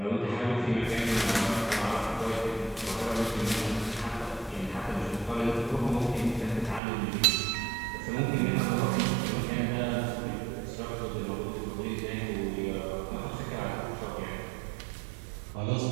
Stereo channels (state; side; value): drops out; left; at 6.8 s